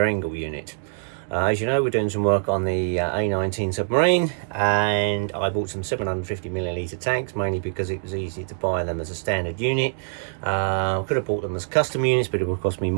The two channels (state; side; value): silent; left; digital silence